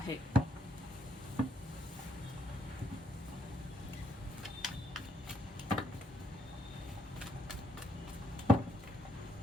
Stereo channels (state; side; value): normal; both; correlation 0.73